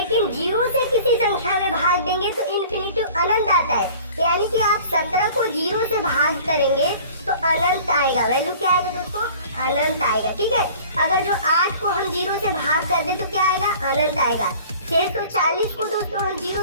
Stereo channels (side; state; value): both; inverted; correlation -0.46